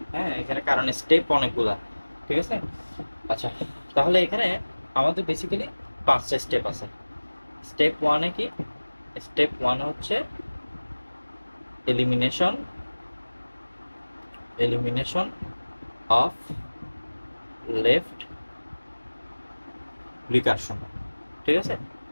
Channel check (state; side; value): inverted; both; correlation -1.00